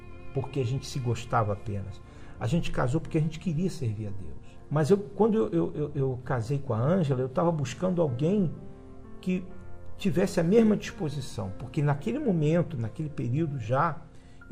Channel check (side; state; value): both; identical; correlation 1.00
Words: porque a gente se gostava apenas. A gente casou porque a gente queria servir a Deus. Mas quando eu casei com a Ângela, eu estava buscando alguém que tivesse a mesma disposição. Porque naquele momento, naquele período já,